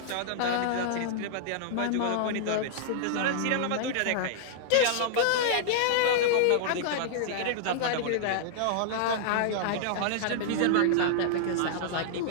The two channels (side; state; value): both; different; correlation -0.01